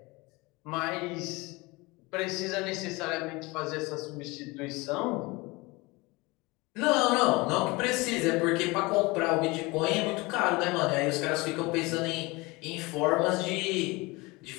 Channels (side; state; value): right; quieter; 23.9 dB